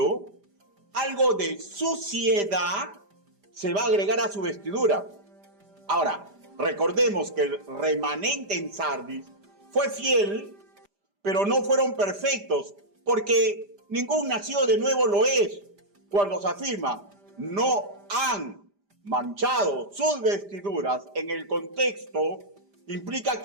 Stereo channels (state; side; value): late; left; 5.0 ms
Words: algo de suciedad se va a agregar a su vestidura. Ahora, recordemos que el remanente en Sardis fue fiel, pero no fueron perfectos, porque ningún nacido de nuevo lo es. Cuando se afirma, no han manchado sus vestiduras, en el contexto implica